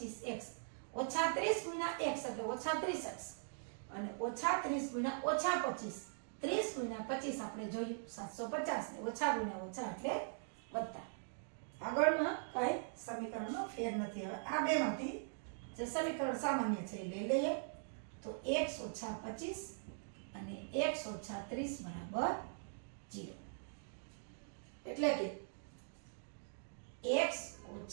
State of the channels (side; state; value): left; silent; digital silence